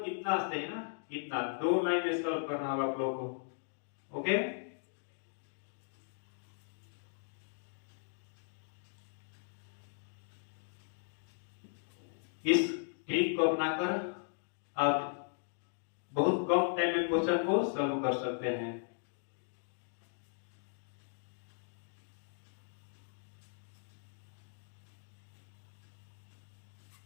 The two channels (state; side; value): silent; right; digital silence